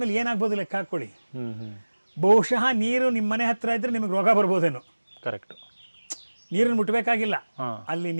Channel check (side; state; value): both; inverted; correlation -1.00